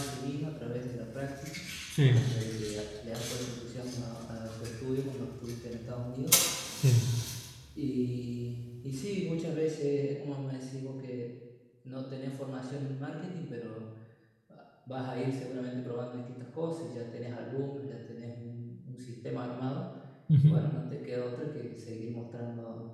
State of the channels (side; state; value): both; identical; correlation 1.00